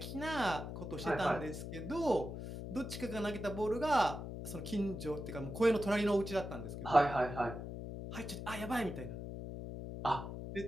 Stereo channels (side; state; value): left; noise; hum, 7 dB below the sound